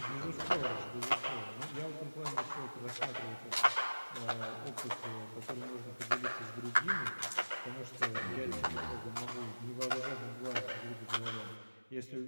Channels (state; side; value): inverted; both; correlation -1.00